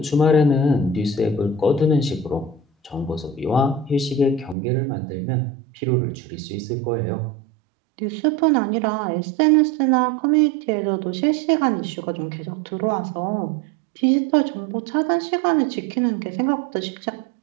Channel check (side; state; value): left; drops out; at 4.5 s